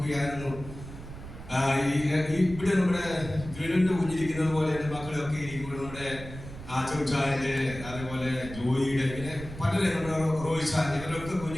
ഇവിടെ നമ്മുടെ വീടിന്റെ കുഞ്ഞിരിക്കുന്നത് പോലെ എൻ്റെ മക്കളൊക്കെ ഇരിക്കുമ്പോൾ നമ്മുടെ ചോച്ചായന്റെ അതേപോലെ ജോയിയുടെ ഇങ്ങനെ പലരെ നമ്മുടെ റോയിച്ചാൻ ഇവരൊക്കെ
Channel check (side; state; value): right; noise; rumble, 12 dB below the sound